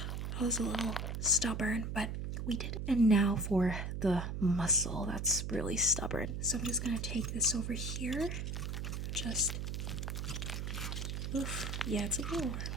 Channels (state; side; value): noise; right; hum, 3 dB below the sound